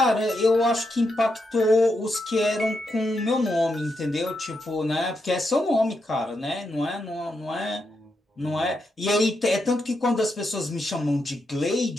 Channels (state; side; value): normal; both; correlation 0.83